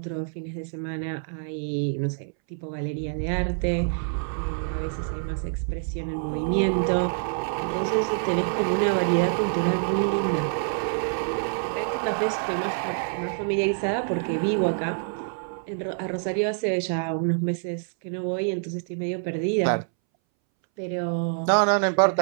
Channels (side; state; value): left; silent; 61 dB below the other